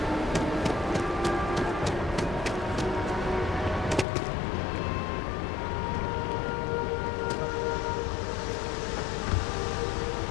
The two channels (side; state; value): right; drops out; at 4.0 s